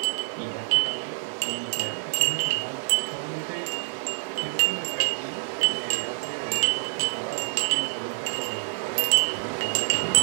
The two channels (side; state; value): left; silent; digital silence